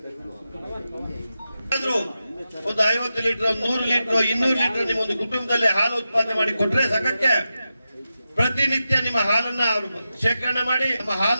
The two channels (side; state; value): both; inverted; correlation -0.90